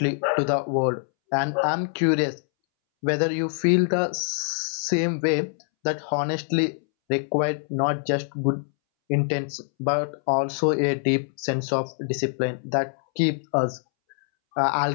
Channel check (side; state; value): right; silent; 62 dB below the other